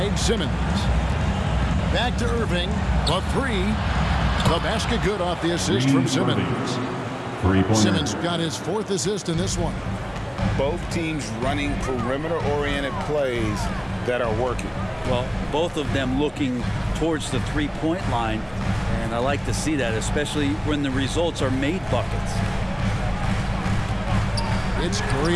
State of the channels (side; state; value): both; identical; correlation 1.00